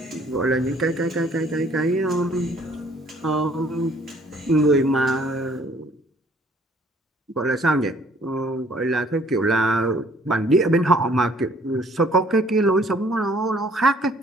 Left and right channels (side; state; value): both; normal; correlation 0.60